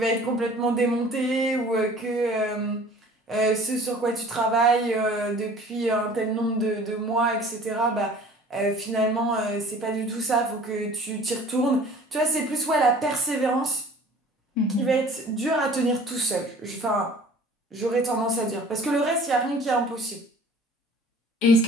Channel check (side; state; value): both; normal; correlation 0.48